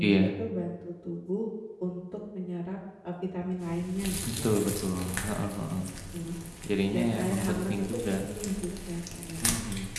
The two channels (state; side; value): identical; both; correlation 1.00